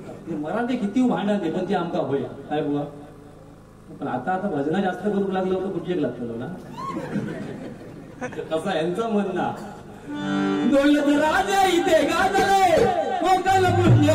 मराठी किती भांडाते पण ते आमका होय काय बुवा. पण आता भजना जास्त करू लागलं होतं कुठे लागतं ना कसा यांचं म्हणणं. राजा इथे गाजले कोकण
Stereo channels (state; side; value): identical; both; correlation 1.00